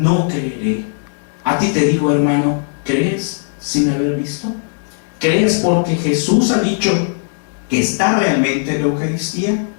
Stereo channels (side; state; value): right; silent; digital silence